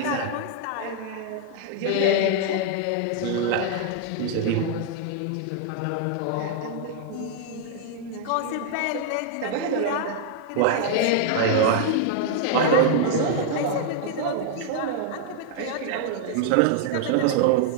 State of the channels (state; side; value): different; both; correlation 0.00